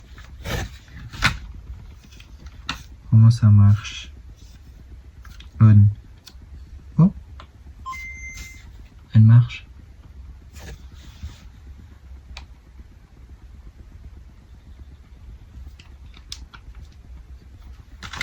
Comment ça marche? On. Oh, elle marche.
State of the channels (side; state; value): both; identical; correlation 1.00